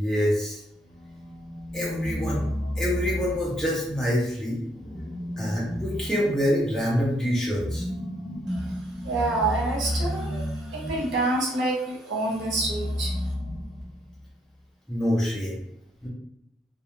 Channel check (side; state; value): both; normal; correlation 0.72